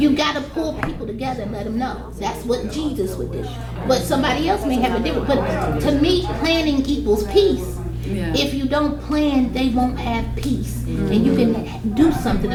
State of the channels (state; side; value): identical; both; correlation 1.00